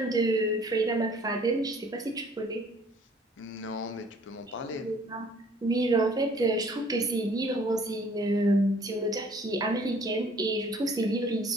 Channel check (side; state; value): both; normal; correlation 0.57